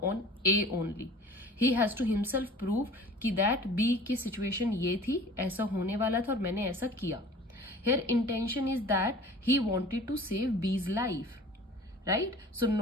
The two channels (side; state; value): both; normal; correlation 0.44